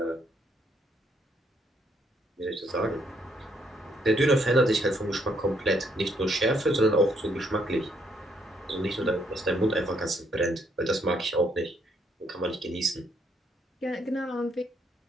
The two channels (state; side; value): normal; both; correlation 0.71